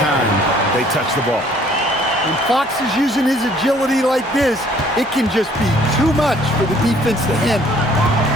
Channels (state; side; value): normal; both; correlation 0.59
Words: they touch the ball. When Fox is using his agility like this, it can just be too much for the defense to handle.